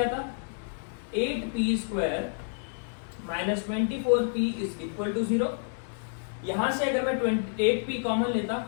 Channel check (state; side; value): silent; right; digital silence